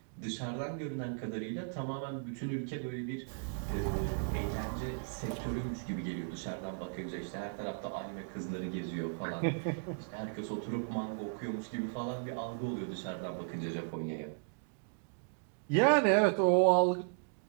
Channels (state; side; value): silent; left; digital silence